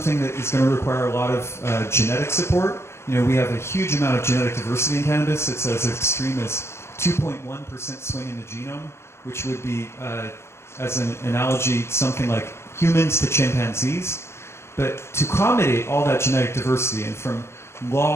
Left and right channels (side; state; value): right; late; 0.13 ms